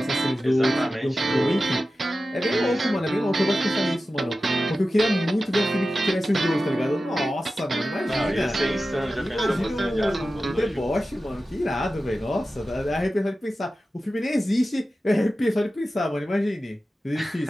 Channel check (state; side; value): normal; both; correlation 0.94